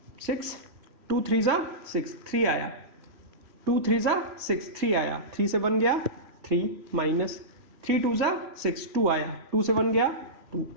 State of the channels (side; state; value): left; late; 3.1 ms